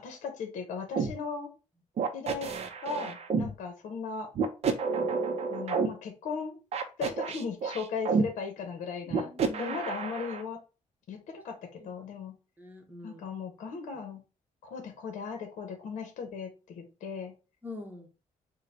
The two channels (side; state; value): both; normal; correlation 0.43